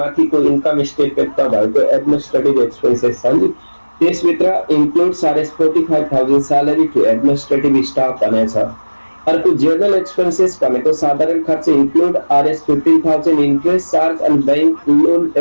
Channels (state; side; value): inverted; both; correlation -1.00